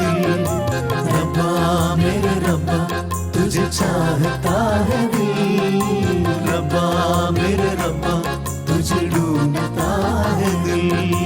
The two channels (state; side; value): identical; both; correlation 1.00